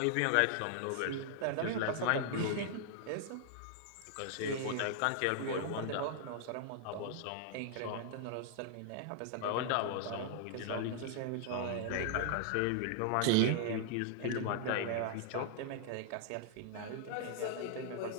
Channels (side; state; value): both; different; correlation -0.01